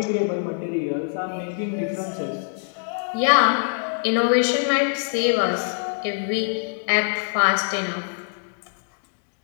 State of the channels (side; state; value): right; silent; 63 dB below the other